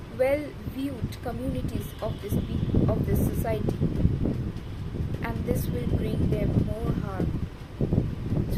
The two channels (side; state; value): both; identical; correlation 1.00